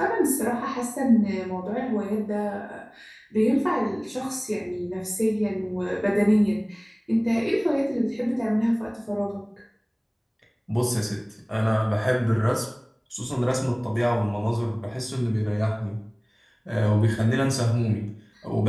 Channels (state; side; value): identical; both; correlation 1.00